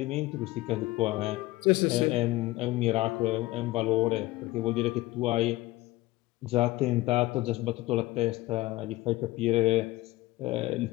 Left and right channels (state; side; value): quieter; right; 18.7 dB